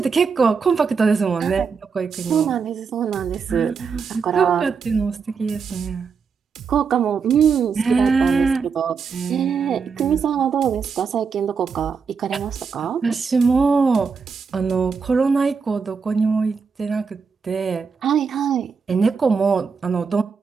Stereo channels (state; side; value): quieter; left; 5.6 dB